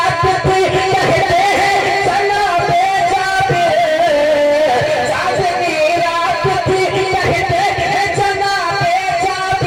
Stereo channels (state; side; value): identical; both; correlation 1.00